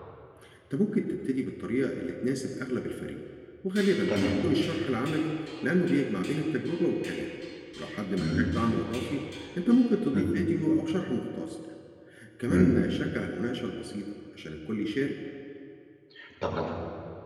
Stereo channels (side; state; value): both; identical; correlation 1.00